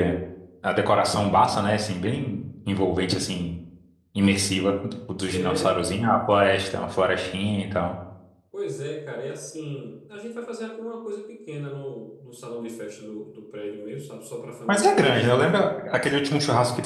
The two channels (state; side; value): identical; both; correlation 1.00